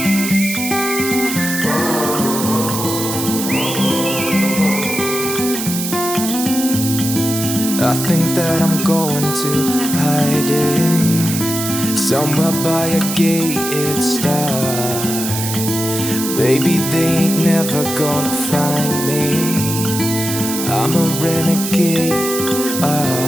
I think that I'm going to hiding somewhere by a gated star. Baby, they ain't never gonna find me. I'm a renegade.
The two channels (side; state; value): right; noise; hiss, 5 dB below the sound